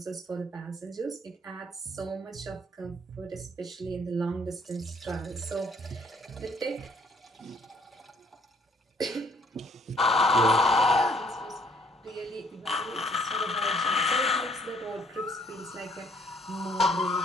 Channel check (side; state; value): both; normal; correlation 0.64